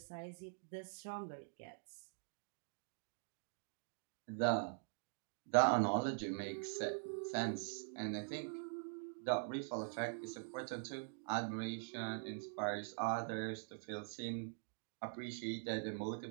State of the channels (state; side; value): silent; left; digital silence